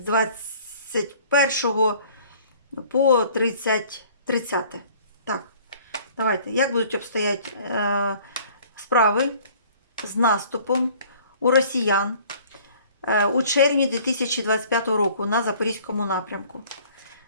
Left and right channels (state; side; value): inverted; both; correlation -0.52